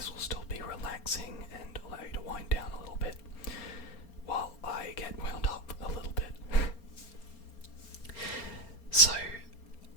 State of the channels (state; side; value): late; right; 4.3 ms